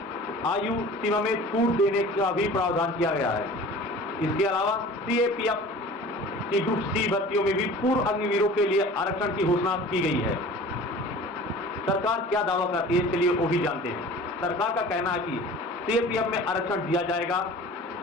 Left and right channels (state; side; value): normal; both; correlation 0.42